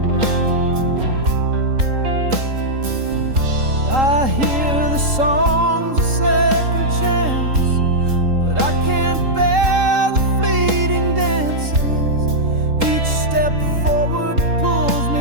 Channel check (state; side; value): late; left; 3.8 ms